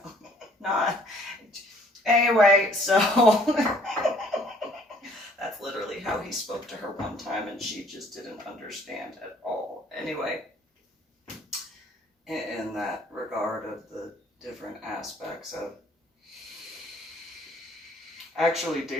not anyway, so that's literally how he spoke to her one time, and she just didn't understand at all. Anyway, in that regard of the different aspects of, actually,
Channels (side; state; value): both; normal; correlation 0.59